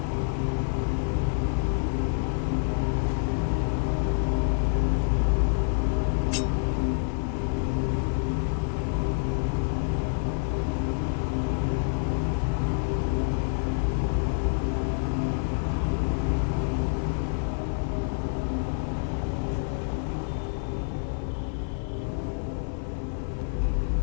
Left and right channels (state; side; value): silent; right; 60 dB below the other